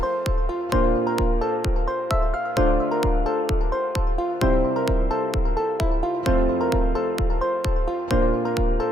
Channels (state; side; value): normal; both; correlation 0.78